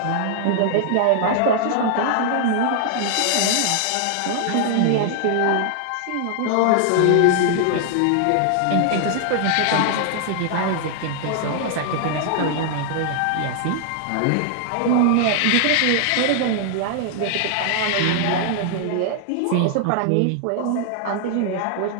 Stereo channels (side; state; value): both; different; correlation 0.00